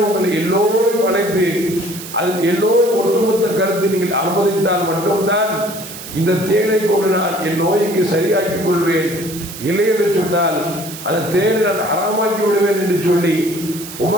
உங்களை எல்லோரும் அழைத்து அதில் எல்லோரும் ஒட்டுமொத்த கருத்தை நீங்கள் அனுமதித்தால் மட்டும்தான் இந்த தேனை கொண்டு நான் என் நோய்க்கு சரியாக்கிக் கொள்வேன். இல்லை என்று சொன்னால் அந்த தேனை நான் ஹராமாக்கி விடுவேன் என்று சொல்லி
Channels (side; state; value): right; noise; hiss, 12 dB below the sound